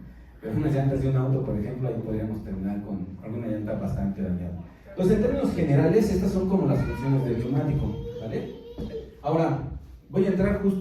Pero unas llantas de un auto, por ejemplo, ahí podríamos terminar con alguna llanta bastante dañada. Entonces, en términos generales, estas son como las funciones del neumático, ¿vale? Ahora, voy a entrar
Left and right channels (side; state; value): both; identical; correlation 1.00